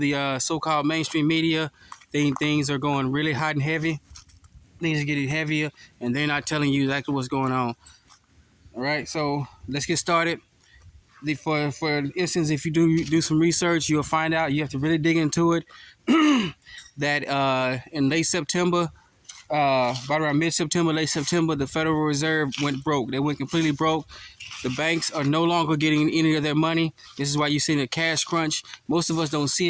so-called mainstream media, things are going really hot and heavy. Things are getting heavier, and they're not telling you exactly what's going on. All right, so let's get started. For instance, if you do some research, you'll find out you have to really dig into it. That in late September, about around mid-September, late September, the Federal Reserve went broke. They went completely broke. The banks are no longer getting any of their money. This is why you're seeing a cash crunch. Most of us don't see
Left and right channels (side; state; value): both; identical; correlation 1.00